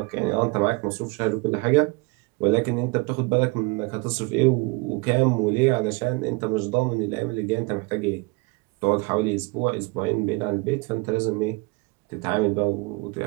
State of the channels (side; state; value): left; quieter; 26.3 dB